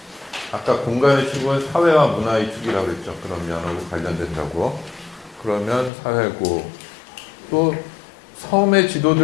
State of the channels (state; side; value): drops out; right; at 5.9 s